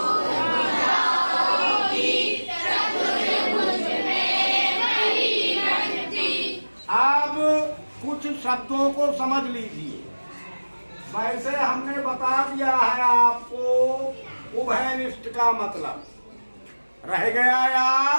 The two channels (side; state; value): both; inverted; correlation -1.00